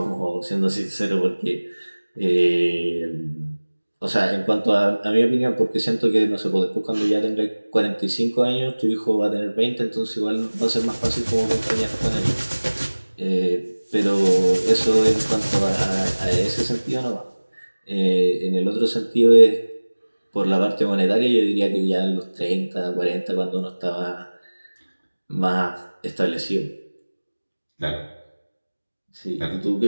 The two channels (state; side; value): inverted; both; correlation -1.00